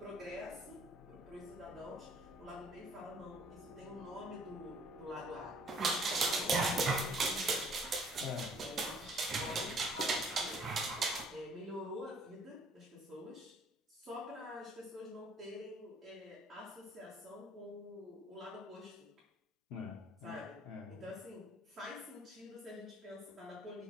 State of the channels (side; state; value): both; normal; correlation 0.58